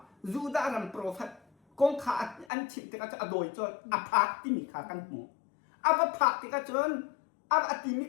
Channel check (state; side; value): drops out; right; at 2.5 s